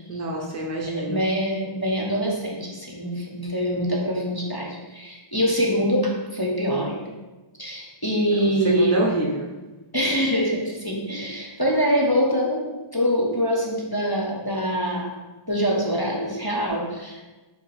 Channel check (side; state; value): right; late; 1.0 ms